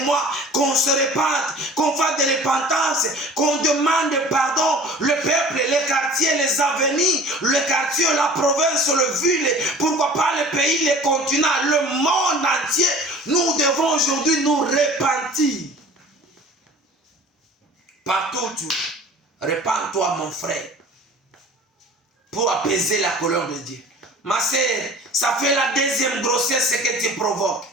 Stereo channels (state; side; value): normal; both; correlation 0.45